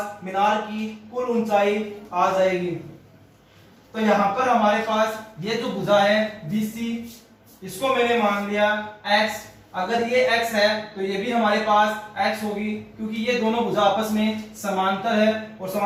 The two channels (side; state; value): both; identical; correlation 1.00